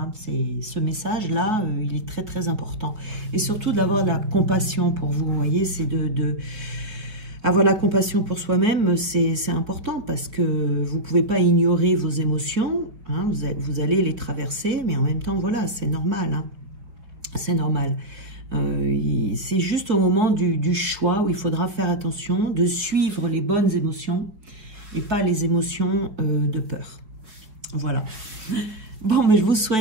Ce message-là, il est très, très important. Et surtout d'avoir de la compassion pour vous, vous voyez, c'est avoir la compassion pour soi-même, c'est important parce que vous ne pouvez pas ignorer vos émotions, hein, vous allez les traverser, mais en même temps, voilà, c'est normal. Hein, c'est normal. C'est juste au moment du choix où il faudra faire attention de suivre les bonnes émotions et pas les émotions de peur. Voilà. Bon, mais je vous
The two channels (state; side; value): late; left; 4.7 ms